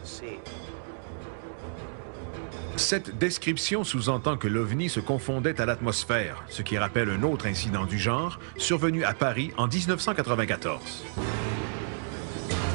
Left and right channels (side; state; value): left; silent; digital silence